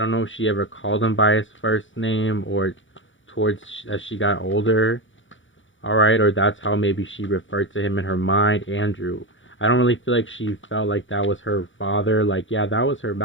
know if she ever called him by his first name or towards as she got older. All right, or that's how maybe she referred to him in her mind, Andrew. I don't really feel like she felt like that was her father. Like, yeah, that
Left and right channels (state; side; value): late; right; 0.56 ms